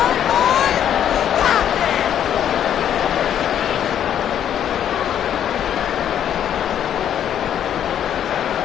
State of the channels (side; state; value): right; quieter; 9.9 dB